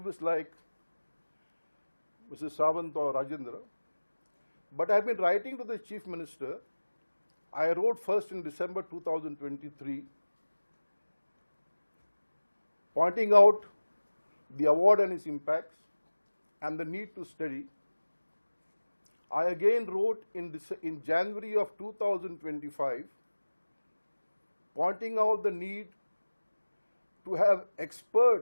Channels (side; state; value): both; inverted; correlation -1.00